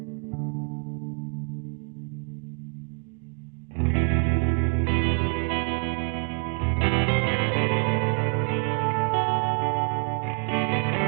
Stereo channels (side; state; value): left; quieter; 37.2 dB